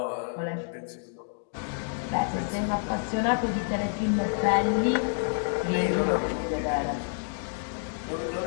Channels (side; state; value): right; silent; digital silence